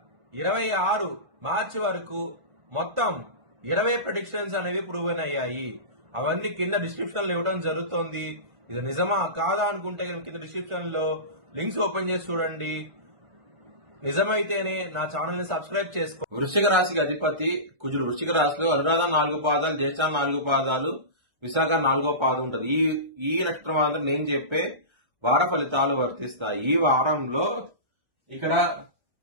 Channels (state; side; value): late; left; 1.3 ms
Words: మార్చి వరకు మొత్తం 20 ప్రెడిక్షన్స్ అనేవి ప్రూవెన్ అయ్యాయి. అవన్నీ కింద డిస్క్రిప్షన్ లో ఇవ్వడం జరుగుతోంది. ఇది నిజమా కాదా అనుకుంటే కింద డిస్క్రిప్షన్ లో లింక్స్ ఓపెన్ చేసి చూడండి. నిజమైతేనే నా ఛానల్ ని సబ్స్క్రైబ్ చేసుకో. వృశ్చిక రాశికి అధిపతి కుజుడు. వృశ్చిక రాశిలో అనురాధ 4 పాదాలు, జ్యేష్ఠ 4 పాదాలు, విశాఖ 4వ పాదం ఉంటుంది. ఈ నక్షత్రం వాళ్ళకి నేను చెప్పే వార ఫలితాలు వర్తిస్తాయి. ఈ వారంలో ఇక్కడ